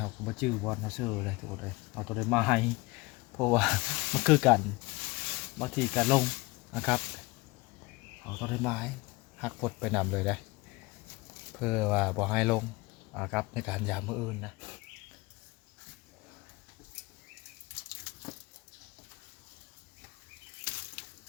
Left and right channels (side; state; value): right; quieter; 23.3 dB